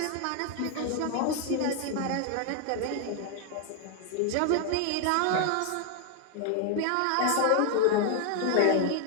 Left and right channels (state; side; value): different; both; correlation 0.00